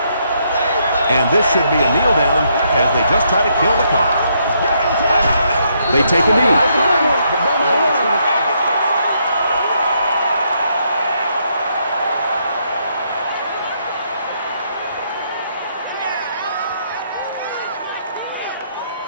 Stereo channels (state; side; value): inverted; both; correlation -0.74